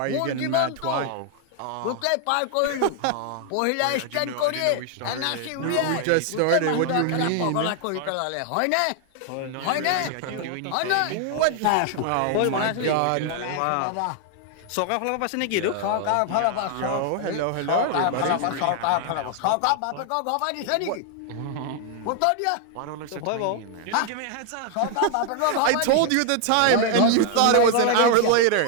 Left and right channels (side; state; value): both; different; correlation 0.00